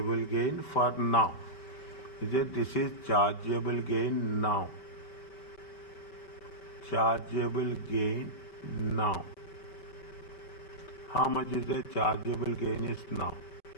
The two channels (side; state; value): right; late; 5.2 ms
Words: gain for now. Is it? This is chargeable gain now. Chargeable gain now. How much is the chargeable gain is now?